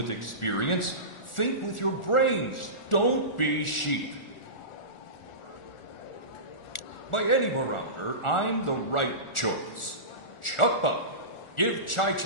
experience. Think with your brains. Don't be sheep. By any barometer, I'm the right choice. Chuck up. Give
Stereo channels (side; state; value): right; late; 1.4 ms